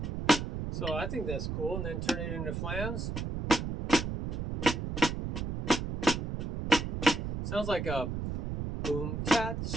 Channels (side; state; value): right; noise; rumble, 3 dB below the sound